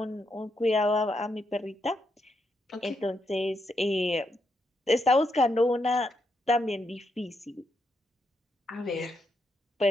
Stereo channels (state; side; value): normal; both; correlation 0.81